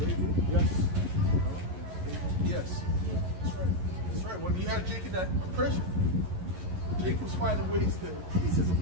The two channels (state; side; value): late; left; 11 ms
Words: Yes. Yes. That's right. That's right. When you had Jake in that oppression, Jake was finding ways to ease his